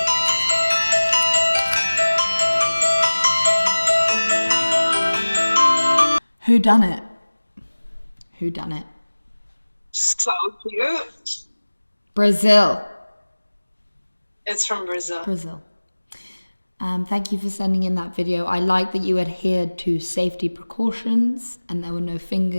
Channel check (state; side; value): inverted; both; correlation -1.00